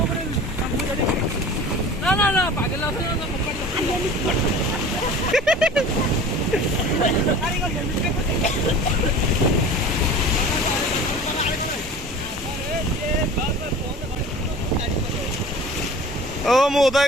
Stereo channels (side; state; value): both; normal; correlation 0.40